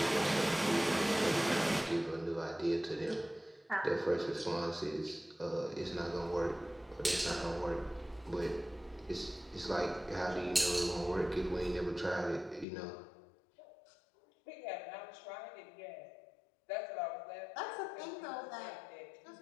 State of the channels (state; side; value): drops out; right; at 12.7 s